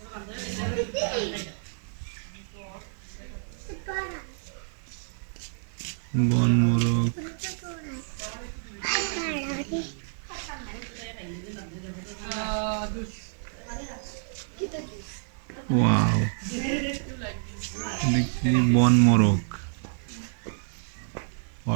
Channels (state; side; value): silent; left; digital silence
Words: বন মোরগ, ওয়াও, দেখি বন মোরগ,